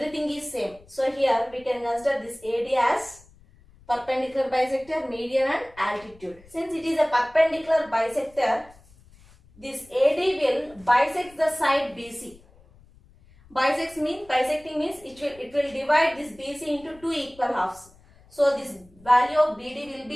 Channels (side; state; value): left; noise; rumble, 26 dB below the sound